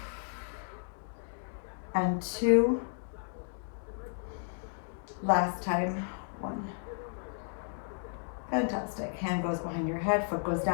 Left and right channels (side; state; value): right; silent; digital silence